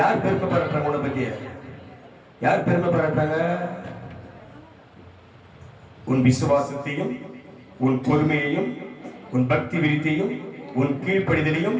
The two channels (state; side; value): identical; both; correlation 1.00